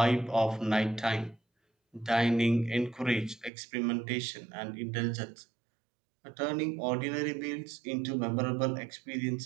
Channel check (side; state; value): left; drops out; at 3.5 s